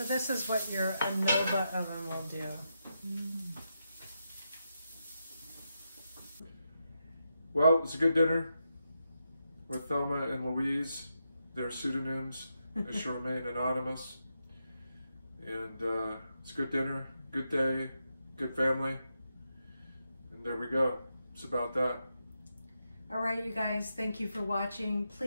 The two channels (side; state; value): both; inverted; correlation -0.85